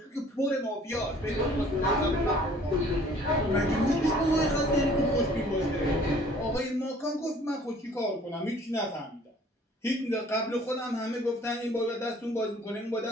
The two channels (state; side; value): normal; both; correlation 0.54